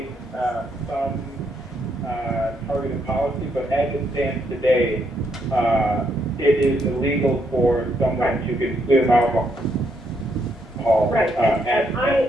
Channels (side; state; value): both; normal; correlation 0.75